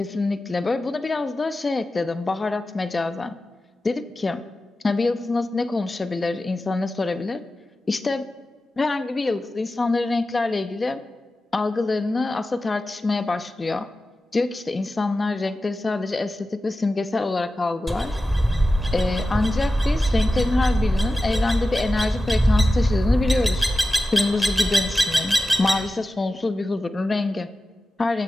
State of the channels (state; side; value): normal; both; correlation 0.94